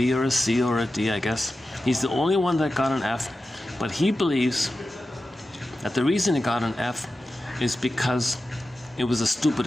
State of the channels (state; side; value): normal; both; correlation 0.93